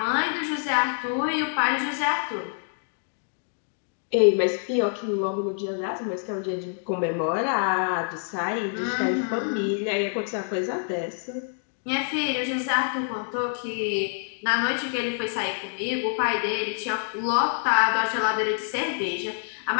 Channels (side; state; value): right; silent; digital silence